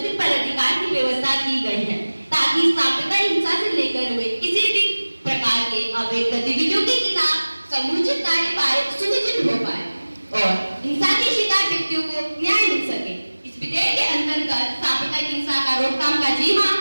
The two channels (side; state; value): both; inverted; correlation -1.00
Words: पदाधिकार की व्यवस्था की गई है, ताकि सांप्रदायिक हिंसा से लेकर हुए किसी भी प्रकार के अवैध गतिविधियों के खिलाफ समुचित कार्यवाही सुनिश्चित हो पाए और हिंसा के शिकार व्यक्तियों को न्याय मिल सके। इस विधेयक के अंतर्गत सांप्रदायिक हिंसा का रोकथाम का जिम्मा